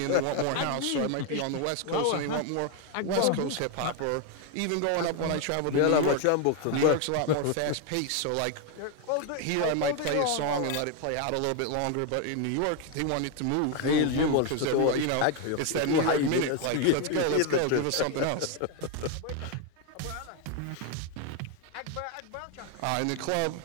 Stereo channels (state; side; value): different; both; correlation 0.01